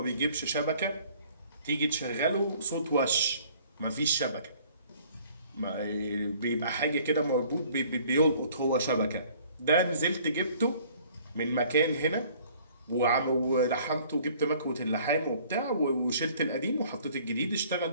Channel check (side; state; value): both; inverted; correlation -0.55